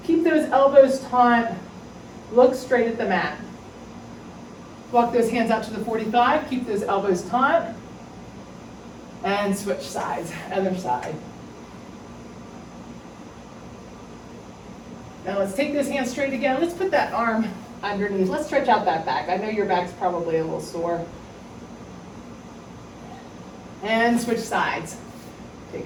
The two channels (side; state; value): both; identical; correlation 1.00